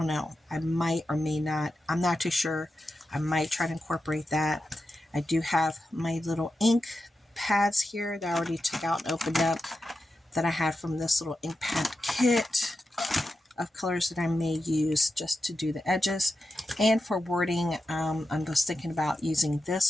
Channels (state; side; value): normal; both; correlation 0.90